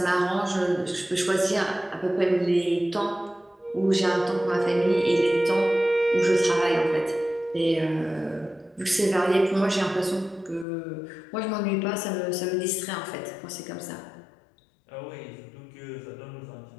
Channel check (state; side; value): drops out; right; at 10.7 s